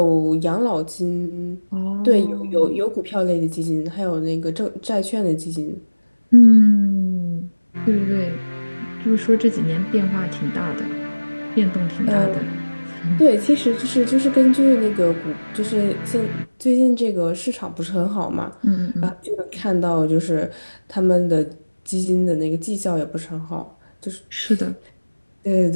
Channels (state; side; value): inverted; both; correlation -1.00